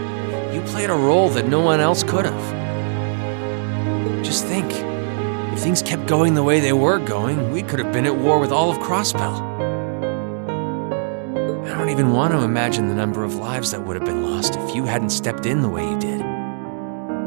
You played a role that no one else could have. Just think, if things kept going the way they were going, we could have been at war with all of Crossbell. I don't even want to imagine the number of lives that would have been lost if you hadn't stepped in the way you did.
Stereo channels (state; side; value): silent; left; digital silence